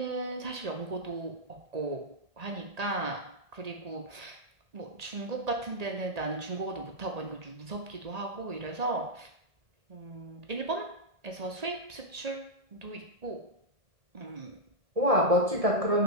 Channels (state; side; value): late; left; 1.8 ms